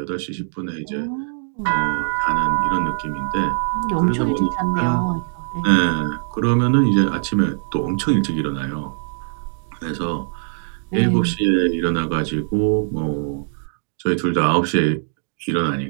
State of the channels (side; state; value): left; silent; digital silence